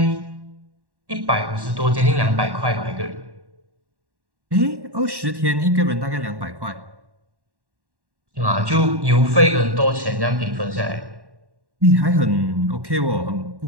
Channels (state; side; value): late; left; 1.1 ms